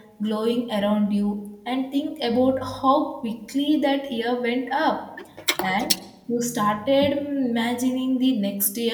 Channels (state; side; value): identical; both; correlation 1.00